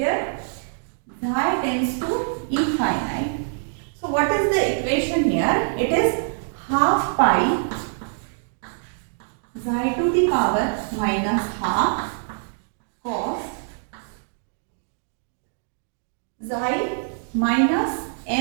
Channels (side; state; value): left; silent; digital silence